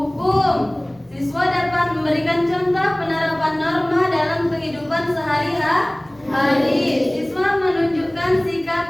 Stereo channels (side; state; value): left; noise; hum, 30 dB below the sound